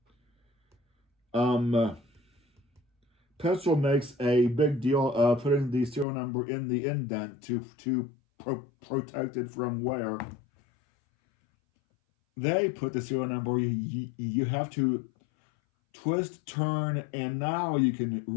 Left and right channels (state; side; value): drops out; right; at 6.1 s